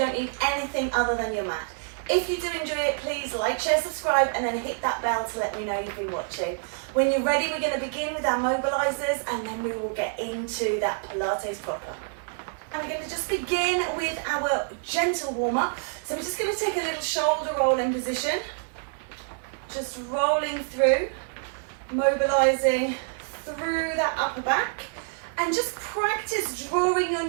need anything other than your mat. If you do enjoy it, please like, share, subscribe, and then hit that bell to let me know you've been watching. When you're ready, we're going to begin with our mobilizers and then we will get into that Pilates proper. I'm going to just begin with our gentle warm-up. So we're just going to take a little shoulder roll in position. Just rolling through, mobilizing through that upper back. And just practice drawing your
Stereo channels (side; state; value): left; silent; digital silence